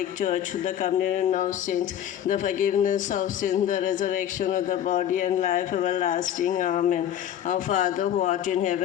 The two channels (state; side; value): quieter; right; 10.5 dB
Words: Church, the communion of saints, the forgiveness of sins, the resurrection of the body, and life everlasting. Amen. Our Father who art in